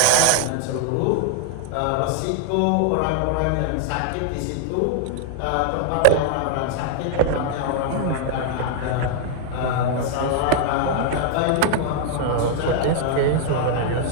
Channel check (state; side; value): different; both; correlation 0.00